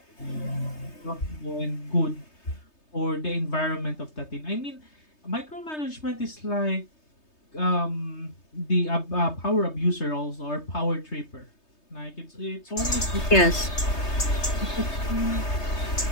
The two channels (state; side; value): late; right; 3.3 ms